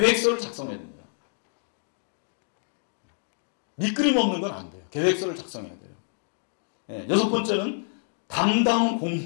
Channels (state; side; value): silent; right; digital silence